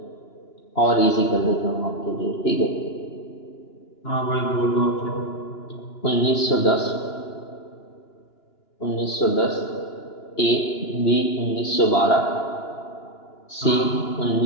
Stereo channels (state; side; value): late; right; 2.9 ms